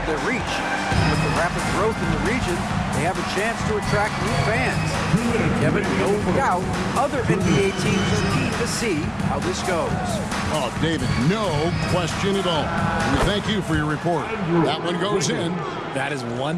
their reach. With the rapid growth in the region, they have a chance to attract new fans. Kevin, no doubt, other NBA teams are keen to see how this goes. Oh, David, no question at all. We thank you for your report. That one goes in. That is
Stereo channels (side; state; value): both; identical; correlation 1.00